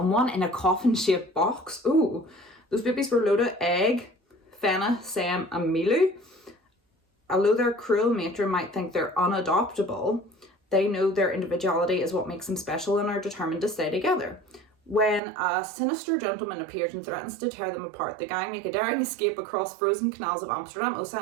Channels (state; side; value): drops out; left; at 15.2 s